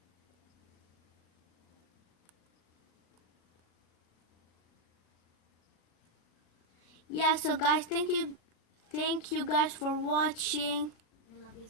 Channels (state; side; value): late; right; 37 ms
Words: Yeah, so guys, thank you guys for watching. We love you